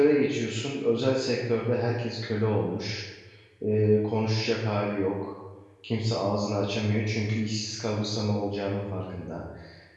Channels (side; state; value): both; identical; correlation 1.00